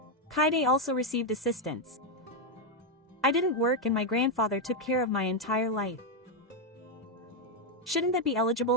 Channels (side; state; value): both; normal; correlation 0.03